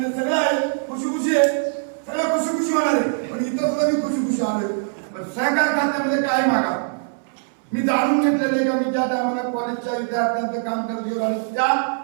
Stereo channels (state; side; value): silent; left; 63 dB below the other